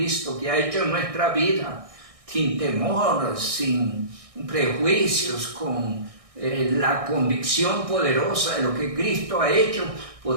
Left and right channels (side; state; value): left; late; 1.6 ms